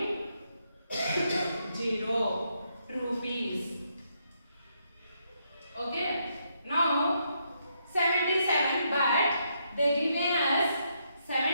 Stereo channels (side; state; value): both; inverted; correlation -0.77